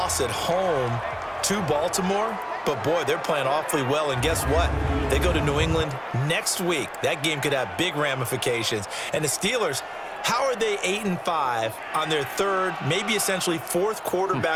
at home to Baltimore, but boy, they're playing awfully well. And guess what? They go to New England next week. That game could have big ramifications. And the Steelers, how are they 8-5 on their 3rd, maybe essentially 4th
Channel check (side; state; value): both; identical; correlation 1.00